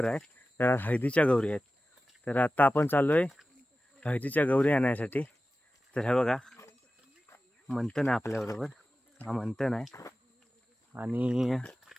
आहे, तर हळदीच्या गौरी आहेत. तर आता आपण चाललो आहे हळदीच्या गौरी आणायसाठी. तर हे बघा, मंथन आहे आपल्याबरोबर. हा मंथन आहे आणि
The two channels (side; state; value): both; normal; correlation 0.95